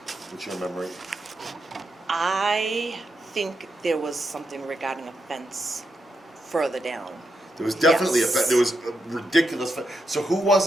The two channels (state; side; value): normal; both; correlation 0.84